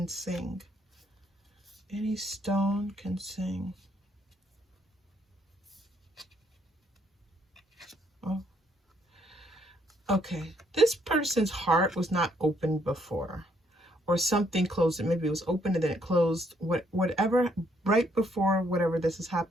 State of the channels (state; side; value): normal; both; correlation 0.70